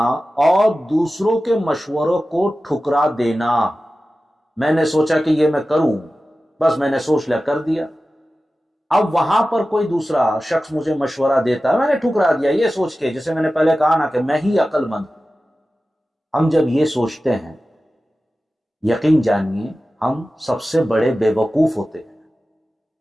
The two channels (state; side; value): normal; both; correlation 0.95